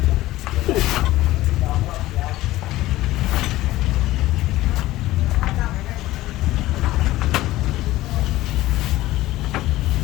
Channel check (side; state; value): right; quieter; 16.6 dB